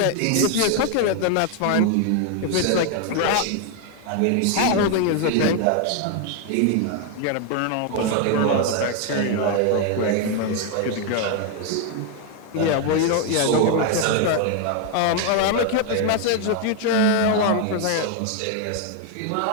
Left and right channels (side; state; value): both; different; correlation 0.01